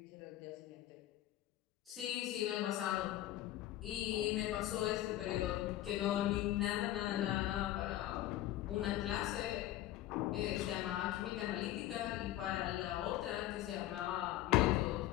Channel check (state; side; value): quieter; right; 14.3 dB